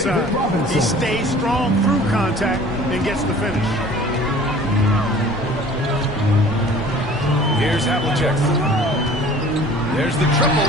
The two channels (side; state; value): both; normal; correlation 0.48